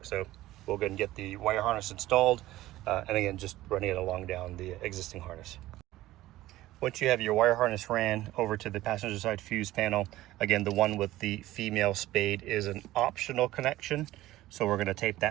So we'll go and get the wire harness installed, and again, just running it along down the existing harness. Once you have your wire harness ran over to the passenger side fuse panel, again, the one with the female spade is an optional connection. So we're going to tape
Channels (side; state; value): left; quieter; 16.1 dB